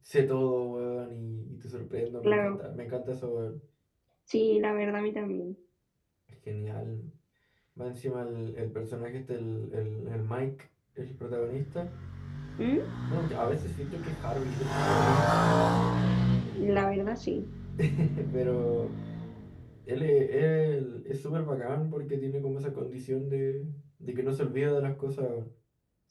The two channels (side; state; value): both; identical; correlation 1.00